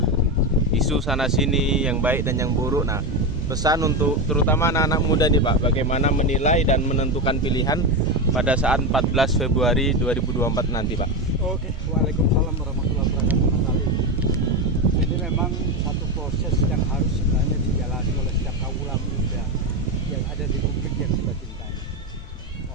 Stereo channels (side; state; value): both; normal; correlation 0.14